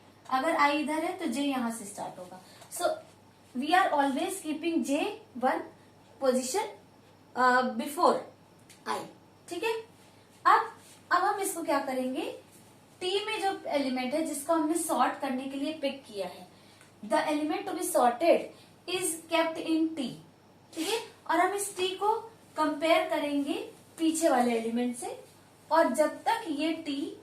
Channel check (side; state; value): both; identical; correlation 1.00